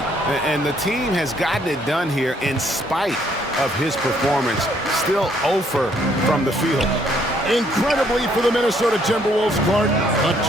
And the team has gotten it done here in spite of his performance. Still 0 from the field. Incredibly for the Minnesota Timberwolves, Clark, the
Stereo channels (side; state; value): both; normal; correlation 0.67